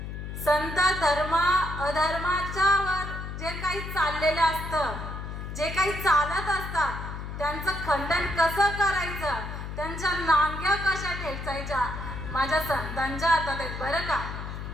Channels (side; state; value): left; noise; hum, 7 dB below the sound